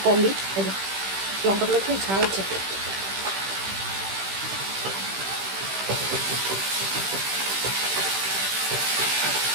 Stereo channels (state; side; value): late; left; 15 ms